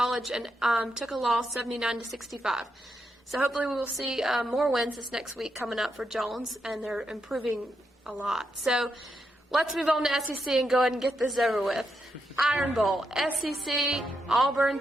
and took a loss 79-65. So hopefully we will see more wins this next week coming up for Jones, and they're improving a lot. So let's move on to SEC and go ahead and get this over with. Iron Bowl. SEC, Auburn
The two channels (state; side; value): normal; both; correlation 0.83